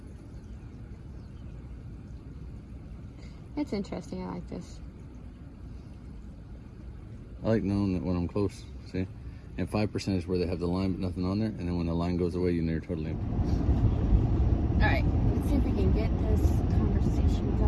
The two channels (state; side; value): identical; both; correlation 1.00